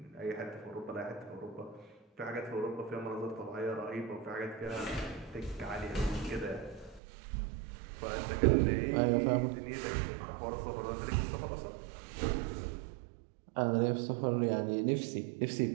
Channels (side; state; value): left; drops out; at 7.0 s